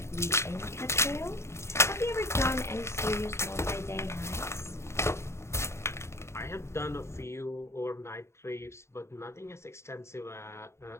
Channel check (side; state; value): right; late; 0.13 ms